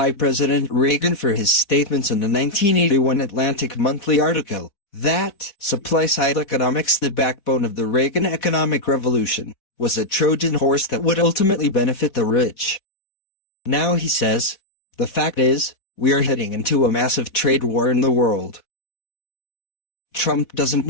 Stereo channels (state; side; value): late; right; 4.2 ms